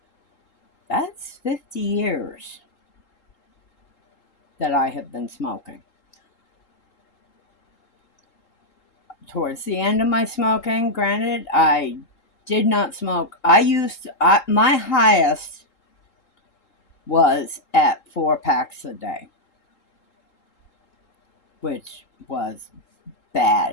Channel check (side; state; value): right; late; 3.8 ms